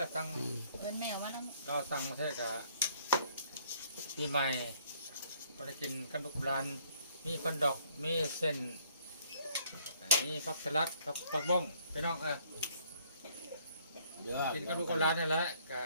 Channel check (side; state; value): both; inverted; correlation -0.62